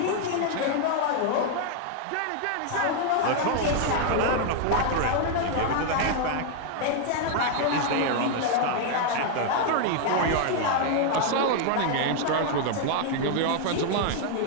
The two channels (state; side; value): different; both; correlation 0.00